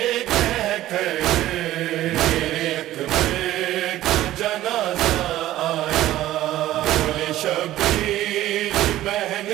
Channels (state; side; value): quieter; left; 14.5 dB